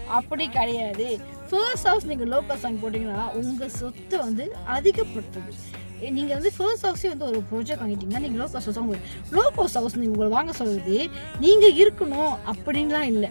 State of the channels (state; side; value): inverted; both; correlation -1.00